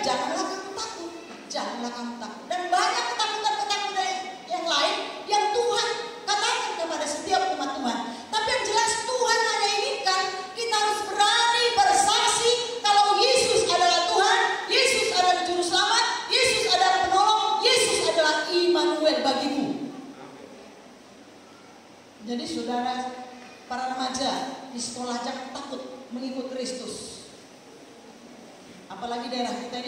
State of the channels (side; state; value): both; identical; correlation 1.00